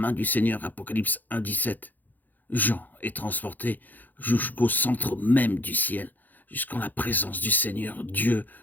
du Seigneur, Apocalypse 1,17, Jean est transporté jusqu'au centre même du ciel, jusqu'en la présence du Seigneur, Dieu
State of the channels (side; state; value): right; late; 0.085 ms